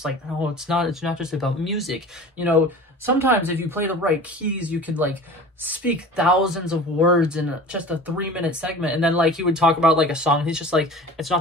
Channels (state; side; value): normal; both; correlation 0.39